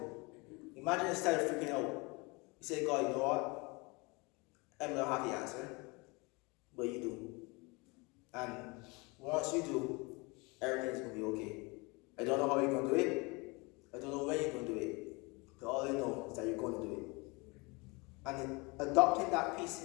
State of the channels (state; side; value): quieter; right; 27.1 dB